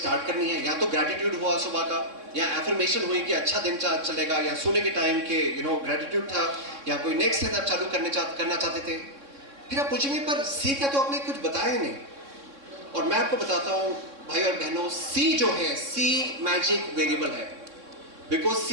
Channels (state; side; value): late; left; 3.6 ms